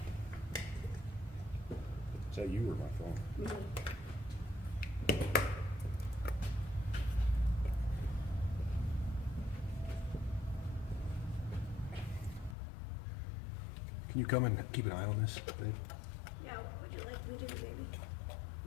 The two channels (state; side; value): drops out; right; at 12.6 s